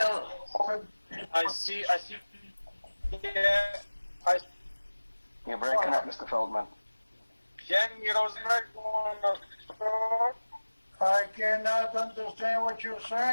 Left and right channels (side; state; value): both; inverted; correlation -1.00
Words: I see, You're breaking up, Mr. Feldman. Jamie Rosenberg, I cannot understand what you're